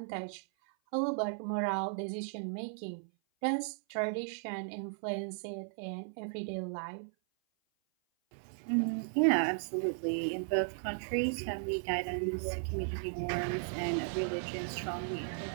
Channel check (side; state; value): left; silent; 54 dB below the other